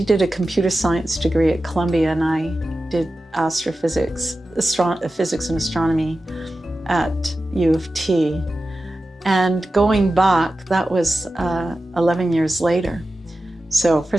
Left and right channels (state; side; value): normal; both; correlation 0.93